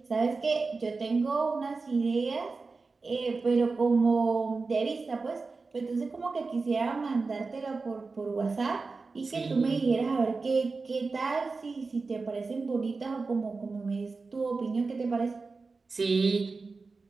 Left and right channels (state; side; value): quieter; left; 4.1 dB